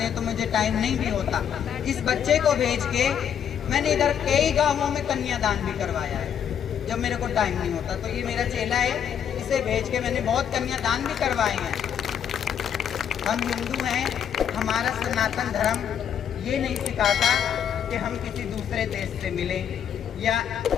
हैं तो मुझे टाइम नहीं भी होता। इस बच्चे को भेज के मैंने इधर कई गांवों में कन्यादान भी करवाया है जब मेरे को टाइम नहीं होता। तो ये मेरा चेला है, पैसे भेज के मैंने बहुत कन्यादान भी करवाए हैं। हम हिंदू हैं, हमारा सनातन धर्म ये नहीं सिखाता कि हम किसी दूसरे देश से मिलें या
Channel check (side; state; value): right; quieter; 8.7 dB